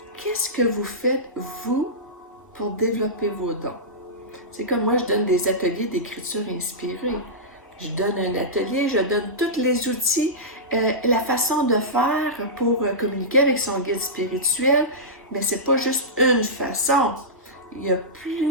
Qu'est-ce que vous faites, vous, pour développer vos dons? C'est comme moi, je donne des ateliers d'écriture inspirée. Je donne un atelier, je donne tous les outils, la façon de faire pour communiquer avec son guide spirituel, mais c'est pas juste une façon. Il y a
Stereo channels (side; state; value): both; normal; correlation -0.14